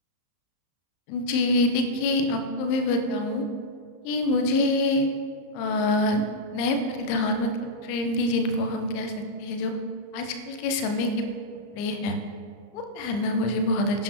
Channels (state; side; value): late; right; 34 ms